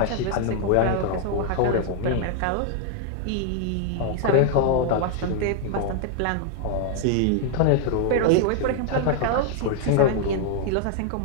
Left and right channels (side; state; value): both; different; correlation 0.00